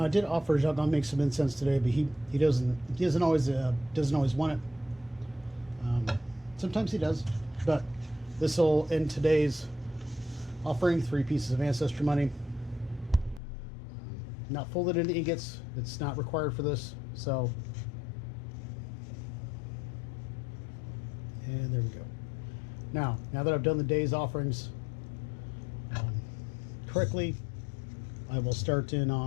I did offer Zhao Gongming some incense today, but he doesn't always want it. Sometimes he does, but this will end today's offering. 3 pieces of ancestor money, not folded into ingots. It's not required for this. So, and there we go. Now that I've done the day's offerings correctly, I will start in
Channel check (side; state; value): right; drops out; at 13.4 s